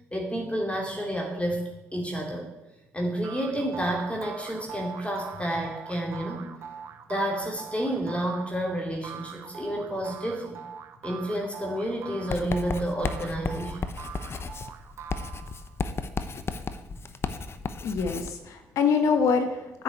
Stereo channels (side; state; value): both; normal; correlation 0.70